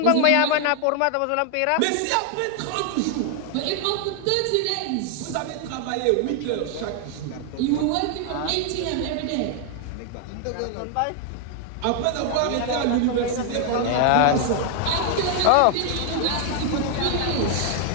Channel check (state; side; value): different; both; correlation 0.00